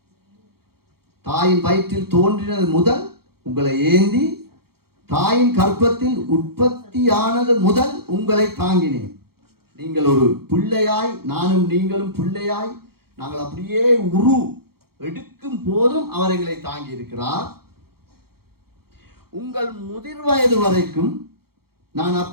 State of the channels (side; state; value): left; late; 0.94 ms